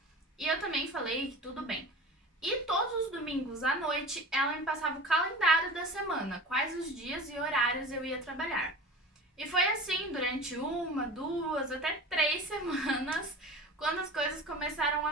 E eu também falei que tudo bem. E todos os domingos à noite, ela me passava o calendário da semana, quais os dias e horários eu ia trabalhar. E foi assim durante 1, 2, até 3 semanas, quando as coisas começaram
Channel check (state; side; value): normal; both; correlation 0.36